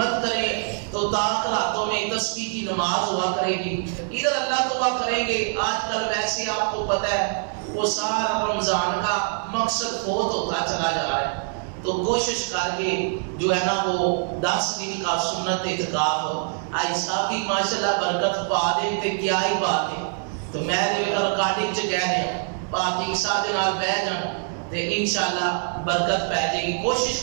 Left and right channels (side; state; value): left; silent; 58 dB below the other